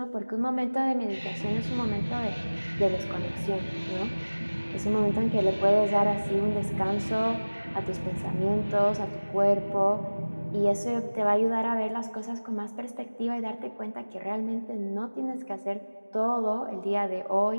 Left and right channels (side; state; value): both; inverted; correlation -1.00